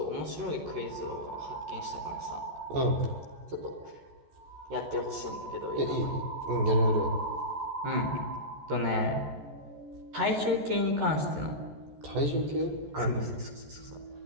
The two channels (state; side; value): late; left; 14 ms